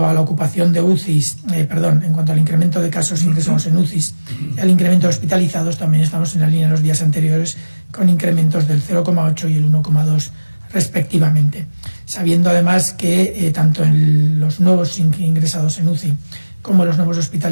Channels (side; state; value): both; inverted; correlation -1.00